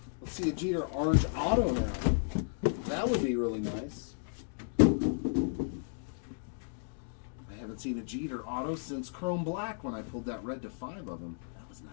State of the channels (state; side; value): silent; right; digital silence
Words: Let's see a Jeter orange auto now. That would be really nice. I haven't seen a Jeter auto since Chrome Black when I pulled that red to 5 of them. That was